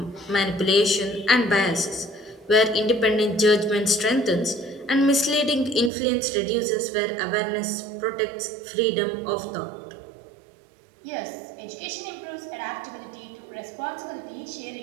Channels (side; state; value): left; drops out; at 5.9 s